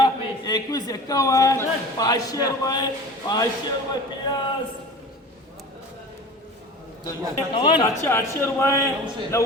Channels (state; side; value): normal; both; correlation 0.38